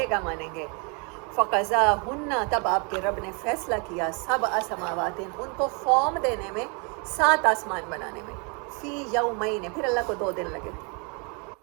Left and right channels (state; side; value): quieter; left; 33.8 dB